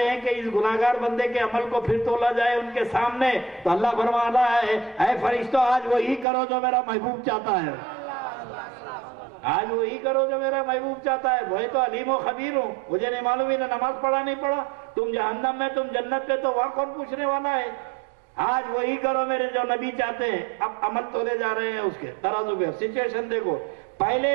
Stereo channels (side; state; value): left; drops out; at 6.2 s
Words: ہیں کہ اس گناہگار بندے کے عمل کو پھر تولا جائے ان کے سامنے. تو اللہ فرما رہا ہے اے فرشتوں آج وہی کرو جو میرا محبوب چاہتا ہے، آج وہی کرو جو میرا محبوب چاہتا ہے. وہی تو علیم و خبیر ہوں، مجھے نہیں معلوم انہیں نماز پڑھا نہیں پڑھا، تم جہنم میں تم جنت پہ، تو وہاں کون پوچھنے والا ہے. آج وہی کرو میرے جو نبی چاہتے ہیں. اب عمل تولے جا رہے ہیں اس کے ترازو پہ. سچویشن دیکھو،